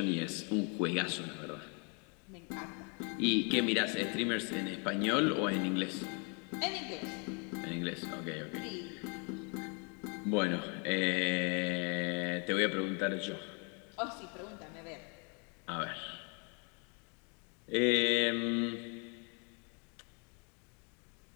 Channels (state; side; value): quieter; right; 36.0 dB